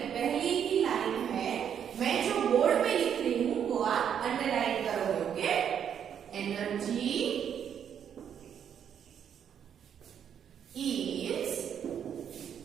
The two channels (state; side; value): quieter; left; 8.6 dB